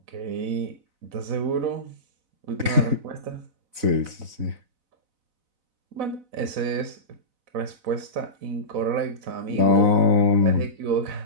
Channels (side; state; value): left; late; 4.0 ms